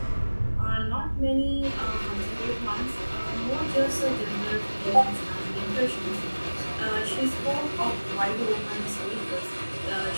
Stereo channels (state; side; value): inverted; both; correlation -1.00